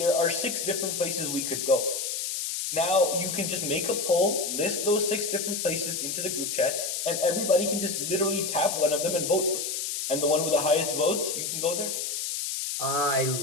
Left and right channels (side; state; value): left; noise; hiss, 2 dB below the sound